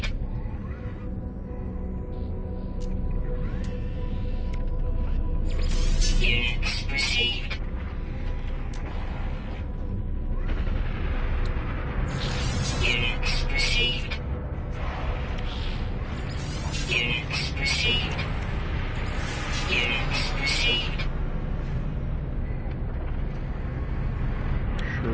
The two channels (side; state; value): both; identical; correlation 1.00